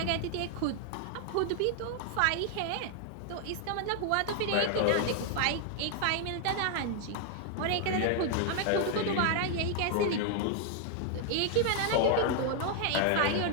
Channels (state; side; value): different; both; correlation 0.00